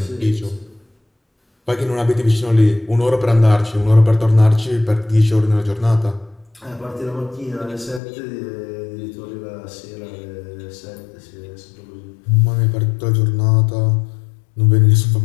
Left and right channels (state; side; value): drops out; right; at 8.0 s